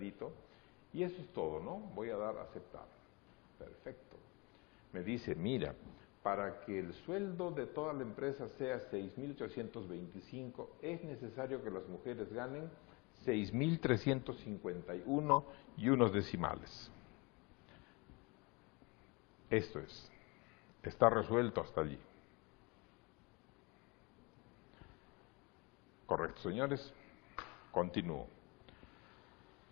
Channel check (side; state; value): right; quieter; 27.9 dB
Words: y eso es todo, ¿no? Voy a dar a aceptar. Perfecto. Me dice, mira, para que el sueldo de toda la empresa sea 6.825, es necesario que las mujeres ganen 6.351 y unos decimales. Esto es, está resuelto hasta allí. Correcto, señores. Continúo.